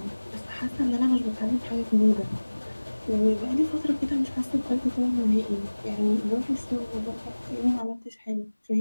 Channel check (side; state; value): both; inverted; correlation -1.00